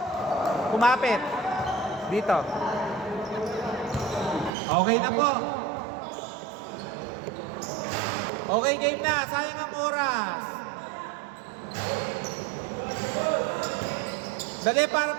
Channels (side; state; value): left; drops out; at 4.5 s